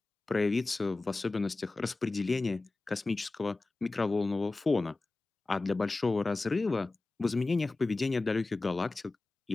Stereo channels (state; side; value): quieter; right; 3.3 dB